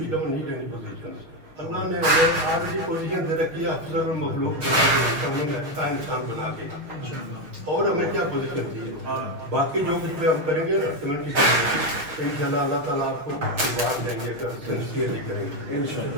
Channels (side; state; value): left; late; 6.4 ms